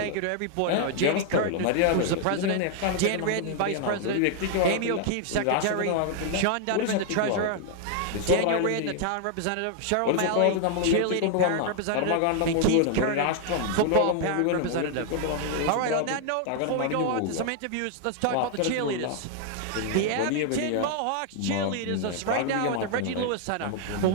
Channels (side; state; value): both; different; correlation 0.00